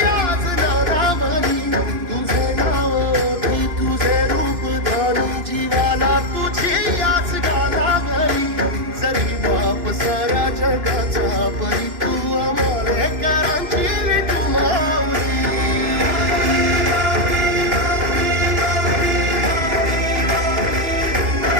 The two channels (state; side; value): late; left; 2.8 ms